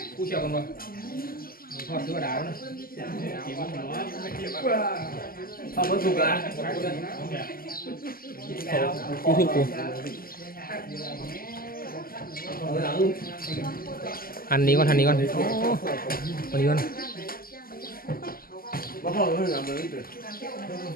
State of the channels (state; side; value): late; right; 0.42 ms